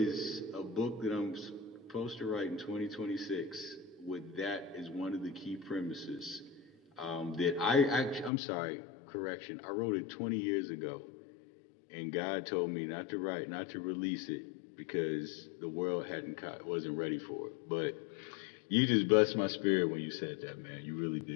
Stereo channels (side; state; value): right; drops out; at 8.3 s